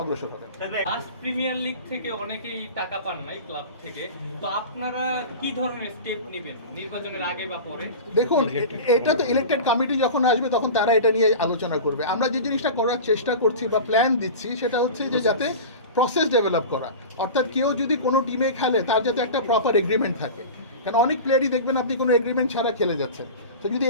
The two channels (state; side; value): inverted; both; correlation -0.32